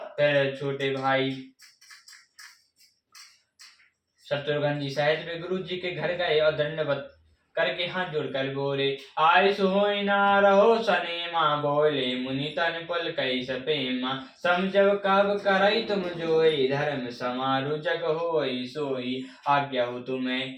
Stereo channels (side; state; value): both; identical; correlation 1.00